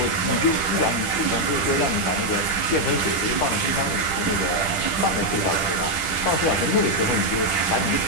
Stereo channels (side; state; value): right; late; 10 ms